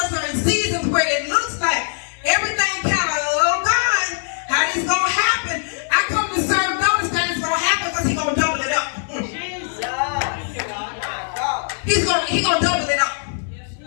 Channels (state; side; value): silent; right; digital silence